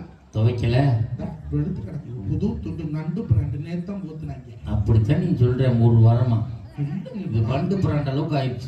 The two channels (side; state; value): both; identical; correlation 1.00